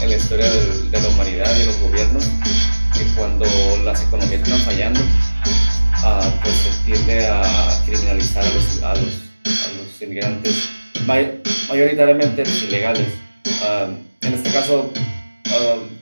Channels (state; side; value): inverted; both; correlation -1.00